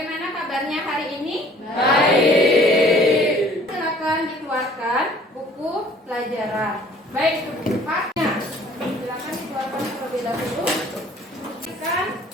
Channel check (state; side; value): normal; both; correlation 0.54